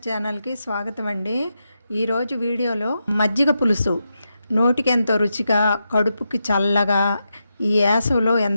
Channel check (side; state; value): both; inverted; correlation -0.87